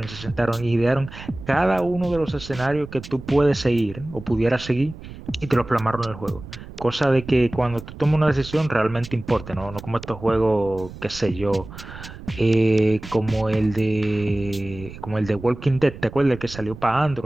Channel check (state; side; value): noise; right; rumble, 14 dB below the sound